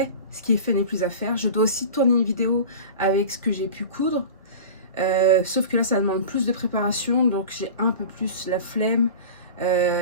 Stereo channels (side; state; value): both; inverted; correlation -0.35